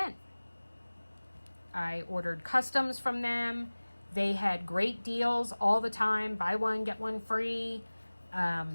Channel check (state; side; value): inverted; both; correlation -1.00